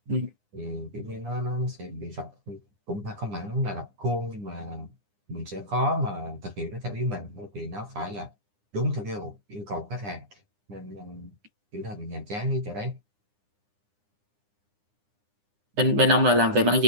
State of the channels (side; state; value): left; late; 9.8 ms